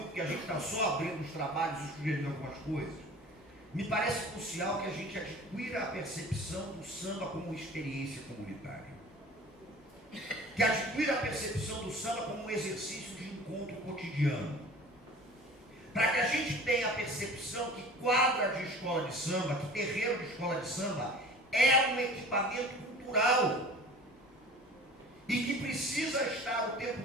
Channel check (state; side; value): normal; both; correlation 0.43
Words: porque a gente está só abrindo os trabalhos e sugerindo algumas coisas, me parece crucial que a gente adquira a percepção do samba como experiência comunitária. Que adquira a percepção do samba como um exercício de encontro cotidiano. Para que a gente tenha a percepção que quadra de escola de samba, que terreiro de escola de samba é um equipamento cultural e que precisa estar o tempo